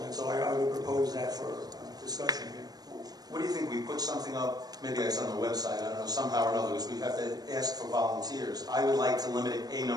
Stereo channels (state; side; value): late; left; 0.19 ms